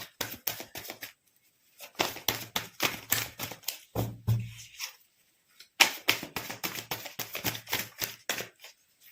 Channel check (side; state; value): both; identical; correlation 1.00